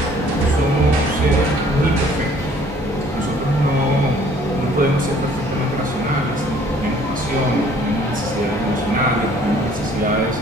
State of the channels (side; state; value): both; normal; correlation 0.57